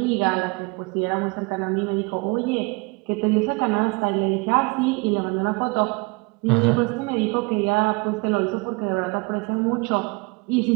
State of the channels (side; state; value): left; quieter; 27.7 dB